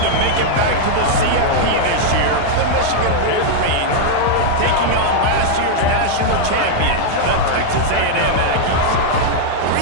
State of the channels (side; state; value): both; different; correlation -0.01